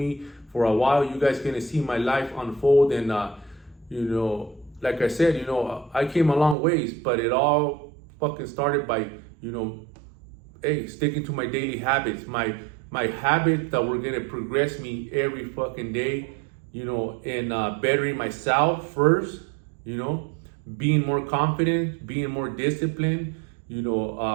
for a while, you guys gonna see my life unfold. And, you know, like I said, you know, I came a long ways, but it all fucking started by, you know, hey, sticking to my daily habits, my habits that were gonna progress me every fucking day, you know, and bettering myself first, you know, being more confident, being more disciplined, you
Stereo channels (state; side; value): drops out; left; at 6.6 s